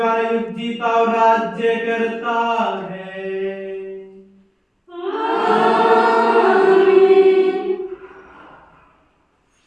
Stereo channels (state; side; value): identical; both; correlation 1.00